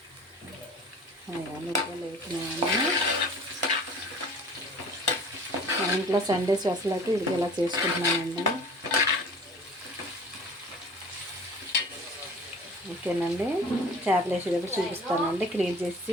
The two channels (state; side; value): normal; both; correlation 0.44